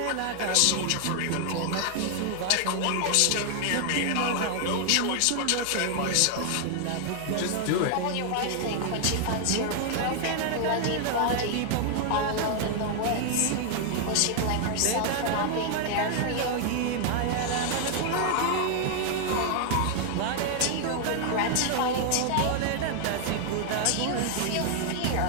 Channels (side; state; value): both; different; correlation 0.00